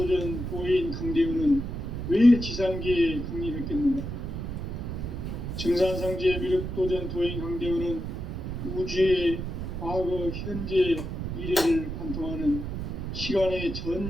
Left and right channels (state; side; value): noise; right; rumble, 5 dB below the sound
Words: 도인 강대우는 왜 지상계에 강림했겠는가? 증산상제 미륵도전 도인 강대우는 우주의 과거, 현재, 미래를 관통하는 시간의